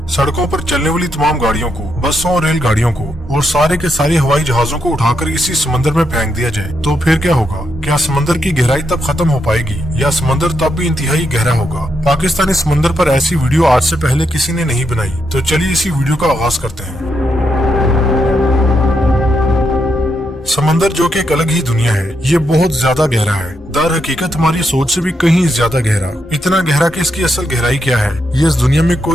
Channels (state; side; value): normal; both; correlation 0.81